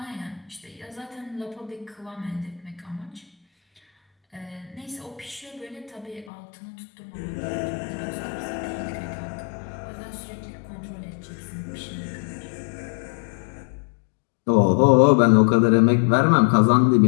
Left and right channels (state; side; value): drops out; right; at 6.3 s